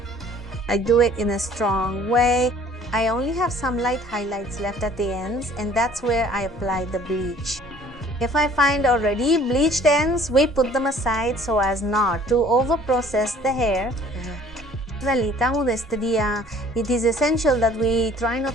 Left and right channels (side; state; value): both; normal; correlation 0.53